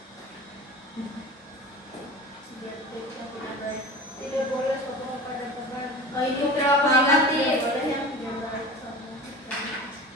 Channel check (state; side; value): normal; both; correlation 0.35